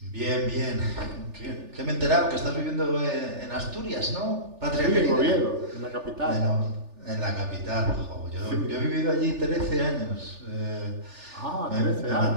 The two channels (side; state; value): left; late; 3.4 ms